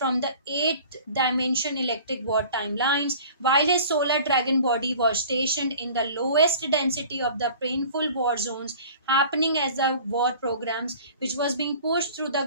the 8th dimension electric war timelines, while his solar dragon body was stationed in the lowest density of the painful war zones happening as the war programs which was being pushed through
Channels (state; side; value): inverted; both; correlation -0.45